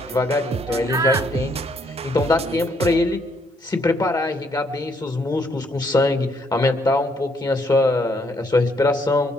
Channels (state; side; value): normal; both; correlation 0.70